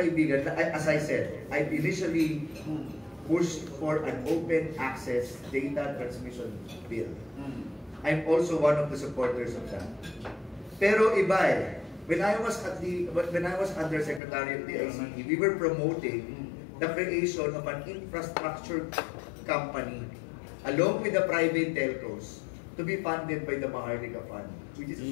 na, as I said, I initially pushed for an open access data transmission bill. I'm also one of the supporters of that. Pero iba when I was Undersecretary of the ICT, we were promoting the creation of an infrastructure company along with the private telcos to be funded by the Maharlika Fund, which is a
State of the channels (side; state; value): right; drops out; at 14.2 s